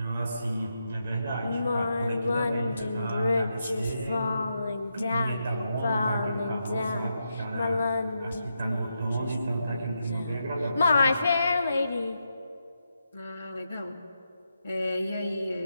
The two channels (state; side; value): inverted; both; correlation -0.84